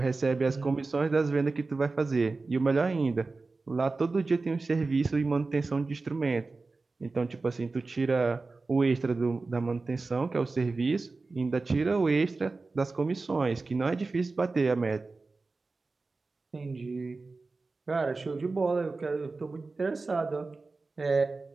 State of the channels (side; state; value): left; quieter; 3.7 dB